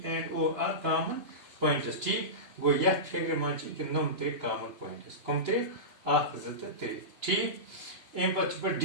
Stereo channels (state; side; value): late; left; 2.9 ms